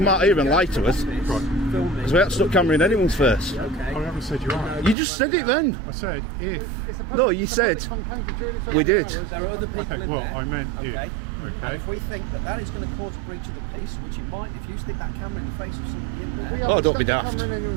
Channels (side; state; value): left; drops out; at 5.0 s